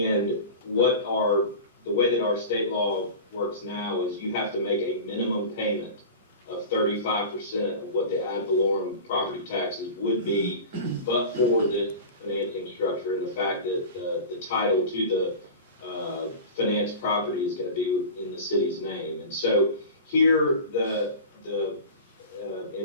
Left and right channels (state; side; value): inverted; both; correlation -0.33